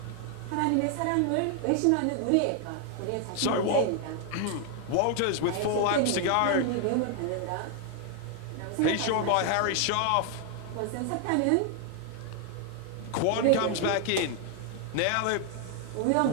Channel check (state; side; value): different; both; correlation 0.00